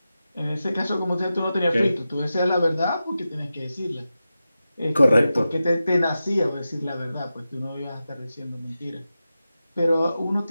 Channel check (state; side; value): inverted; both; correlation -0.92